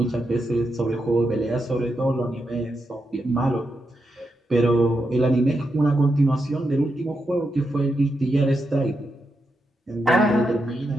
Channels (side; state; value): both; normal; correlation 0.85